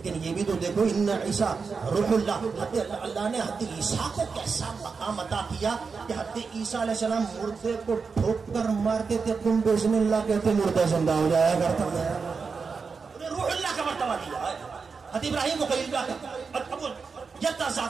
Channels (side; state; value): left; quieter; 5.1 dB